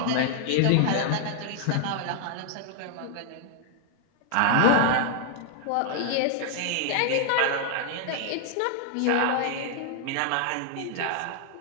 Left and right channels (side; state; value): both; different; correlation 0.00